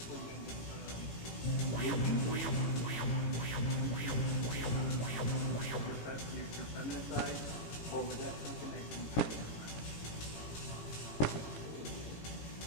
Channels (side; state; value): right; late; 18 ms